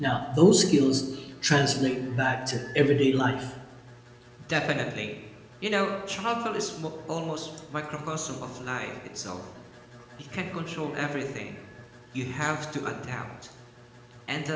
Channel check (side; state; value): both; identical; correlation 1.00